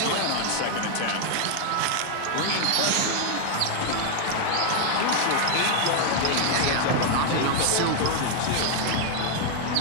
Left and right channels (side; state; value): both; different; correlation 0.00